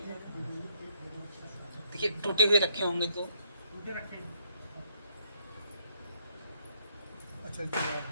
देखिए टूटे हुए रखे होंगे तो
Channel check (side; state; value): both; inverted; correlation -0.71